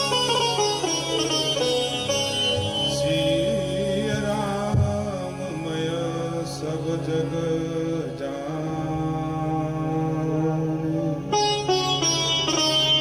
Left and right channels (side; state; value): both; identical; correlation 1.00